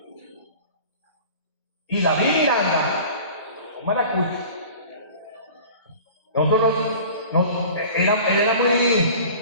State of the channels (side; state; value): both; inverted; correlation -0.42